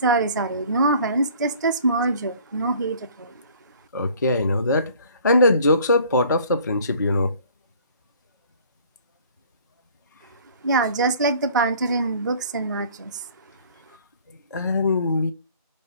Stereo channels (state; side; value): inverted; both; correlation -0.52